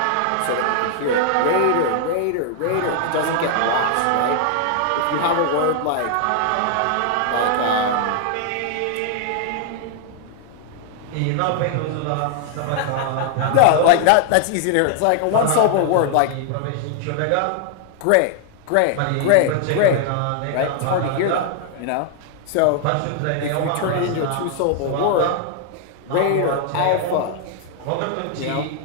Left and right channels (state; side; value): different; both; correlation -0.01